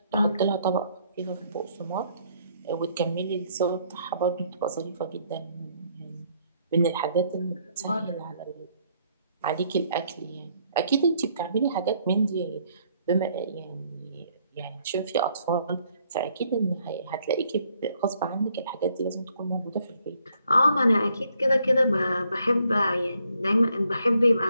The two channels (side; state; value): both; inverted; correlation -0.69